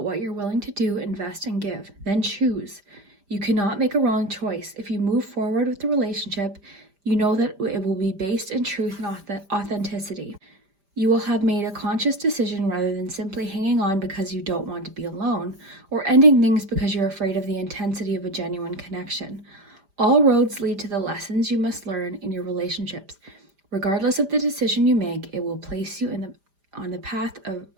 what you're willing to do, invest, and give. Then choose. You cannot make a wrong choice. If you move forward with the relationship, you know that it will be based in truth and authenticity. You will have made a conscious decision rather than simply hanging on because you don't want to be alone, or ending things because you're afraid of the intensity of a genuine connection. All roads lead to the lessons you must learn in your relationships. Regardless of the decision you make, it will place you on the path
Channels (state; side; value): late; left; 5.0 ms